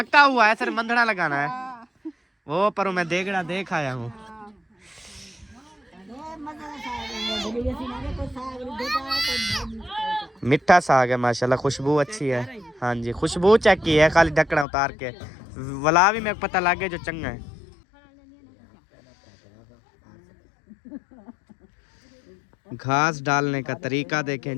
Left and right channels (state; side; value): drops out; right; at 14.7 s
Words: हुआ है, सर मंधना लगाना है वो, पर मैं देगड़ा देख आया हूँ। मिठा साग है माशाल्लाह, खुशबू अच्छी है। हाँ जी, खुशबू चेक की है, खाली ढक्कना उतार के वला भी मेरे को पता लग गया जो चंगा है। घास डालने का तरीका देखें